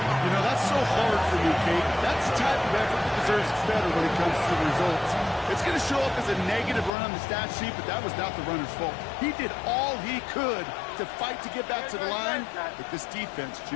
You know, that's so hard for you, Kate. That's the type of effort that deserves better when it comes to the results. It's going to show up as a negative run on the stat sheet, but that was not the runner's fault. He did all he could to fight to get back to the line, but this defense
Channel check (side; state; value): right; drops out; at 6.9 s